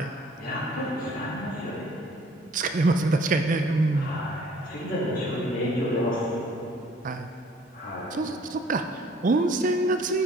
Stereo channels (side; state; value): both; normal; correlation 0.56